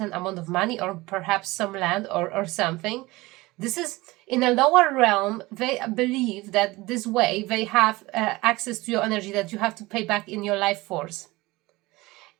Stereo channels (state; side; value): quieter; left; 20.9 dB